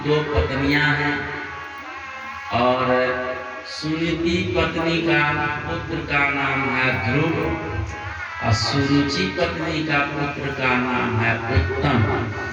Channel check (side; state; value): both; identical; correlation 1.00